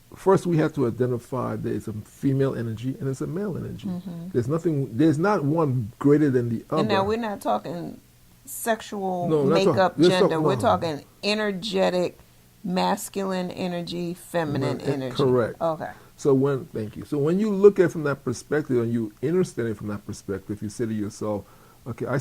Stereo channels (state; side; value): identical; both; correlation 1.00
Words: First, we have to identify there's a female energy and there's a male energy. There's not one greater than the other. And now we're not talking sexual No, we're not makeup, talking- gender. no. We're talking energetic, masculine energy, feminine energy. Correct. Okay. So thank you. So when you look at it from that perspective and you understand it from that perspective, you say to yourself, okay, I